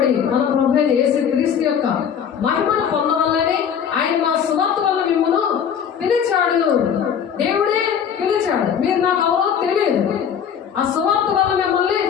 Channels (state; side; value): quieter; right; 7.9 dB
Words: మన ప్రభువైన యేసు క్రీస్తు యొక్క మహిమను పొందవల్లని ఆయన మా సువార్త వల్ల మిమ్మల్ని పిలిచాడు. దేవుడే పిలిచాడు. మీరు నాకు ఎవరో తెలియదు. ఆ సువార్త వల్ల మిమ్మల్ని